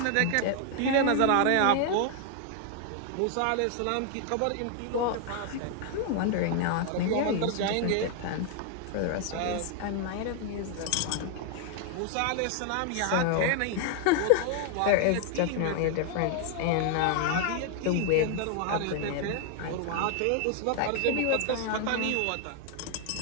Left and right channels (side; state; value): both; different; correlation 0.00